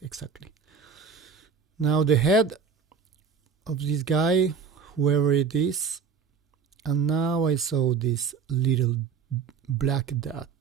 exactly. Now the head of this guy, whoever it is, and now I saw this little black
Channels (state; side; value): quieter; left; 6.1 dB